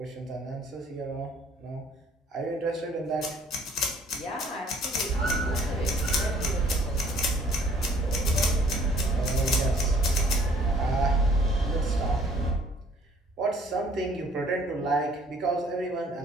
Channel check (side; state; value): both; normal; correlation 0.58